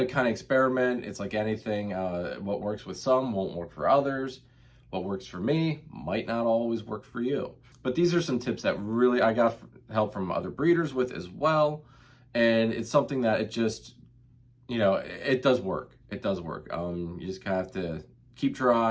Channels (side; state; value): both; identical; correlation 1.00